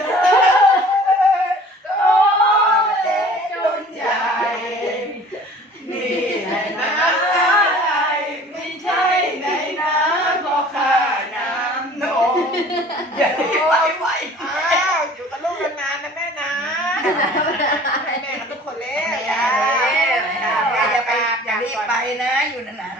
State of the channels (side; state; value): both; normal; correlation 0.48